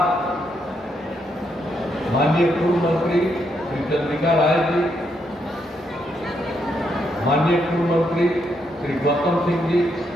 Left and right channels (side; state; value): both; normal; correlation 0.78